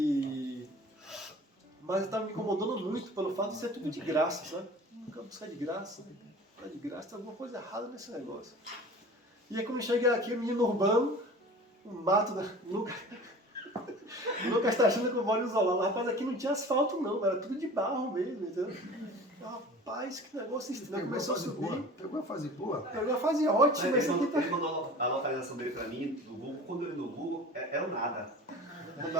Mas estava me incomodando muito pelo fato de ser tudo de graça, sabe? Nunca buscar de graça, né? De graça, tem alguma coisa errada nesse negócio. E aí quando eu cheguei aqui, o menino urbano, um mato da... O Lucas está achando que eu moro isolado. Rapaz, aqui não tinha asfalto não, era tudo de barro mesmo, entendeu? Rapaz, que negócio estranho. Começou a subir. Pegou a fase boa? Pegou a fase ótima. Ele mandou a localização dele pra mim, do Google. Quando eu vi no Google, era o nada.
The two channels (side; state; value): both; normal; correlation 0.41